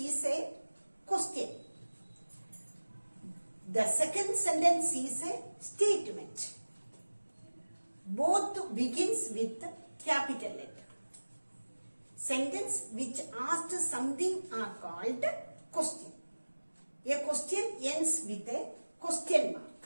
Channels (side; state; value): both; inverted; correlation -1.00